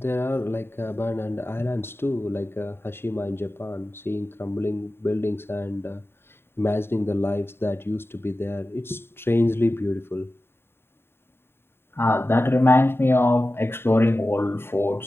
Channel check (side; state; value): right; late; 0.11 ms